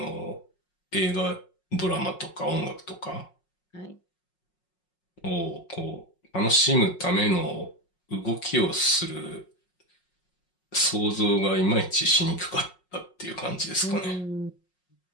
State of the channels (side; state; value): right; late; 5.5 ms